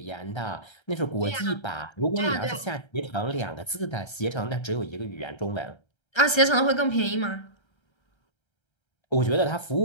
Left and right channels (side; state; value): right; late; 1.3 ms